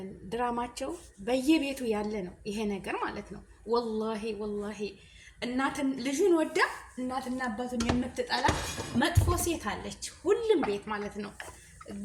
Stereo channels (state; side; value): identical; both; correlation 1.00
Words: ድራማቸው በየቤቱ ያለ ነው ይሄ ነገር ማለት ነው። ወላሂ ልጁን ወዳ እናትና አባቱን የምትጠላ መጥፎ ሴት አለች ሁሉም ቤት ማለት ነው።